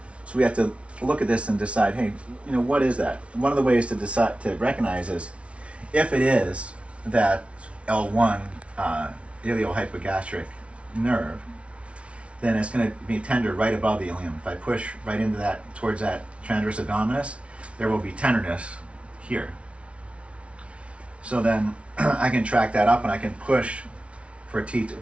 So we have to look at this and decide, hey, what is that? One of the ways to decide to recognize is if it is that L1 iliohypogastric nerve, then it's going to be tender right above the ilium. If I push right into that, towards that transverse abdominis, there will be tenderness here. So then I can track that up and I can push for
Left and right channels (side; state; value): left; late; 0.061 ms